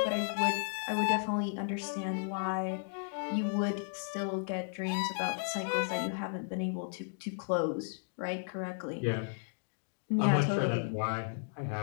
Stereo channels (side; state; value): right; silent; digital silence